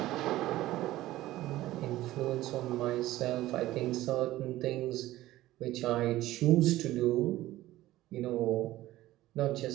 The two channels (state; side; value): quieter; left; 15.9 dB